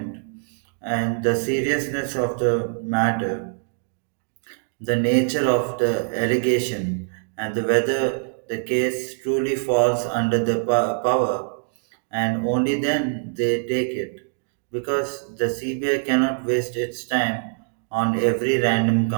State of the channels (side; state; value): left; silent; 63 dB below the other